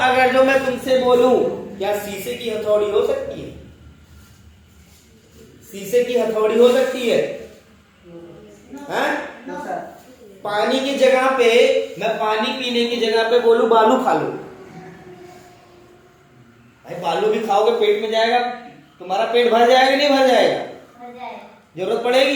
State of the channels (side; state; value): both; identical; correlation 1.00